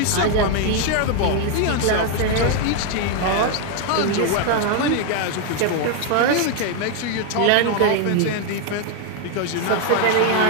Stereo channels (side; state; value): both; different; correlation 0.01